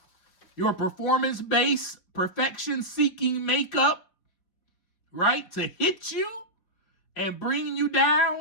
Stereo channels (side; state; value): right; late; 4.9 ms